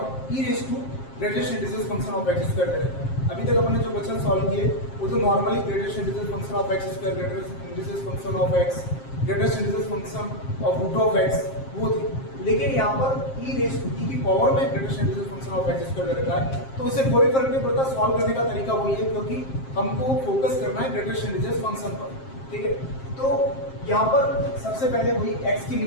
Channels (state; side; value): late; right; 7.5 ms